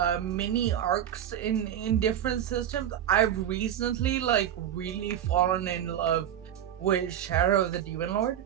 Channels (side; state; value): left; quieter; 10.5 dB